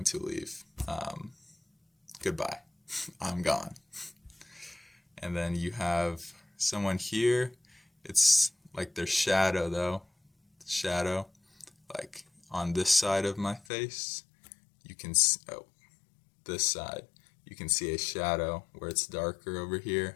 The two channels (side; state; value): right; drops out; at 13.7 s